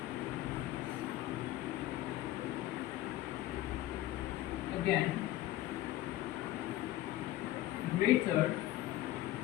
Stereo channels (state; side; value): quieter; right; 14.9 dB